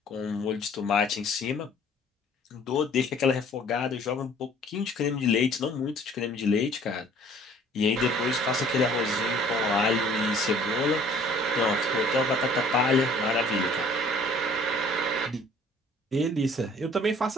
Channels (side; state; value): both; normal; correlation 0.54